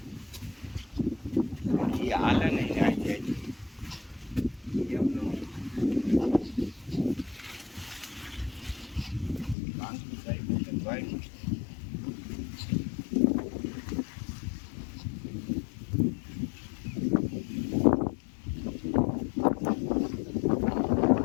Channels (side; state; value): right; drops out; at 9.6 s